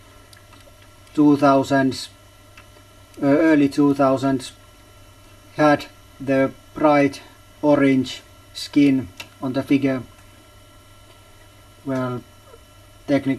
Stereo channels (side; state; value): both; identical; correlation 1.00